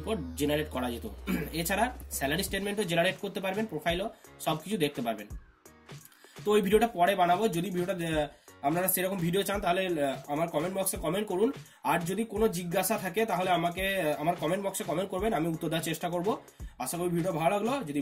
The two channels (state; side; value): identical; both; correlation 1.00